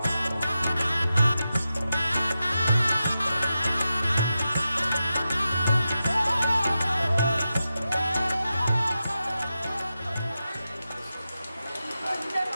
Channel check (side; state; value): both; inverted; correlation -0.91